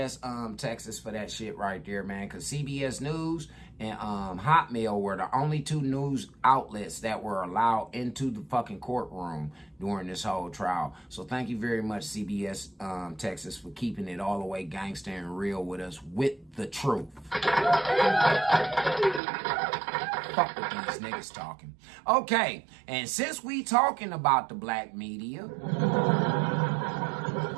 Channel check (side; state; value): left; drops out; at 19.2 s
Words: Texas for that shit right there, man. Because CBS News and Hotmail were the only two news outlets that were allowed into the fucking courtroom during this whole trial. So thank you very much, CBS Texas, for keeping it all the way gangster and real with us with the truth. fuck with these niggas talking. Okay, and since we talking about the black media,